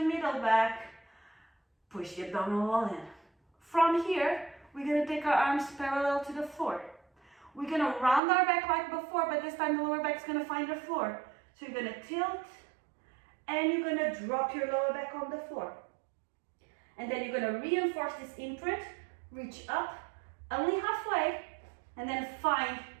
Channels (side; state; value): left; drops out; at 8.2 s